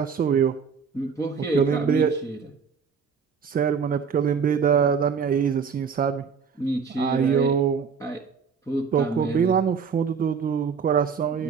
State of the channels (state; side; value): quieter; left; 6.1 dB